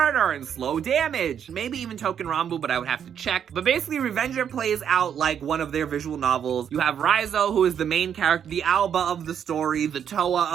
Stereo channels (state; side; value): quieter; left; 8.5 dB